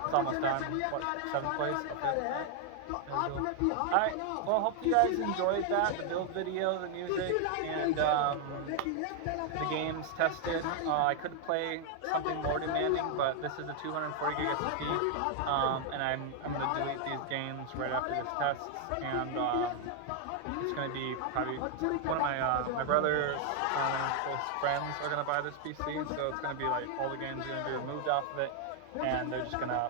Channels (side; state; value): both; different; correlation 0.00